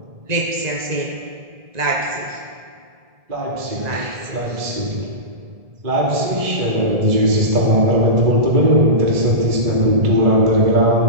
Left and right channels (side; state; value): left; late; 1.7 ms